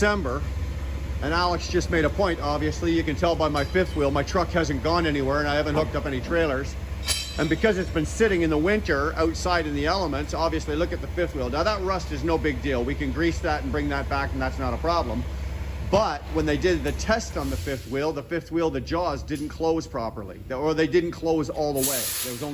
and Alex just made a point. Obviously, you can tell by my fifth wheel, my truck hasn't gone anywhere and I haven't hooked up any trailers. And because it's been sitting in the winter outside in the elements, obviously look at the fifth wheel. Now that rust is no big deal. We can grease that and bring that back and that's not a problem. But when they did the test on the fifth wheel, the jaws didn't close properly, or they didn't close all the way. There was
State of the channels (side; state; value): both; identical; correlation 1.00